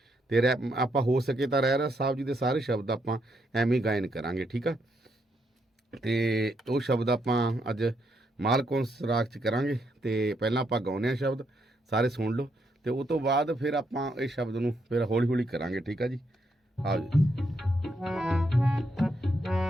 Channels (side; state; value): both; normal; correlation 0.77